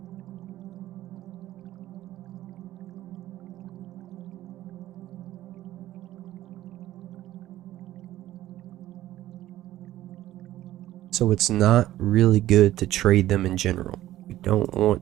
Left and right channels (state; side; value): quieter; left; 14.4 dB